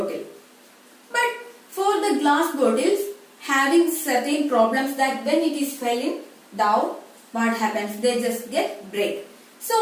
But for the glass bottles, having certain problems that when it is falling down, what happens? They just get break.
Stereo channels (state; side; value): identical; both; correlation 1.00